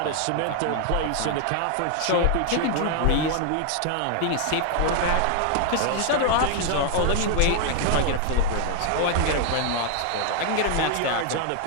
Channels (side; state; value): both; different; correlation 0.00